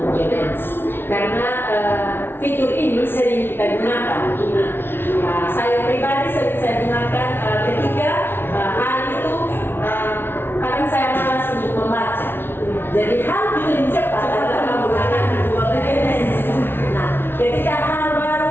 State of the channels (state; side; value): late; right; 0.11 ms